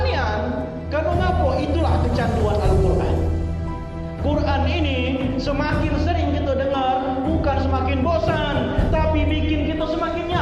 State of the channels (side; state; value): both; identical; correlation 1.00